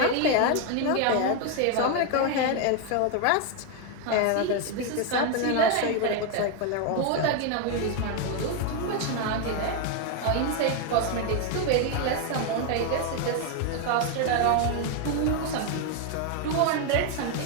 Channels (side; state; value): both; different; correlation 0.01